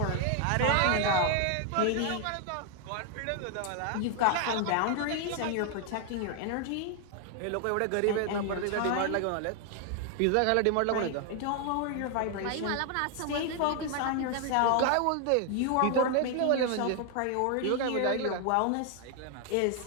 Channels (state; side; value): different; both; correlation 0.00